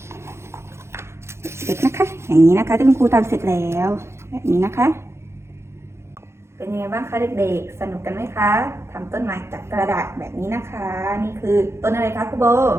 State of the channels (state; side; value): late; left; 0.13 ms